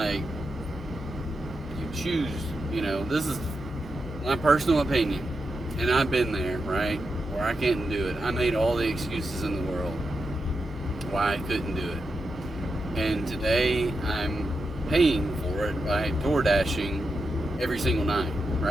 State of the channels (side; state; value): both; normal; correlation 0.87